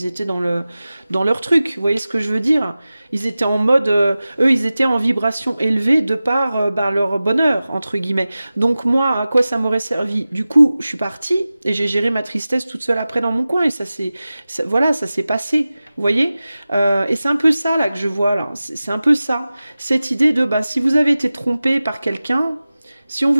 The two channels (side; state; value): both; inverted; correlation -0.96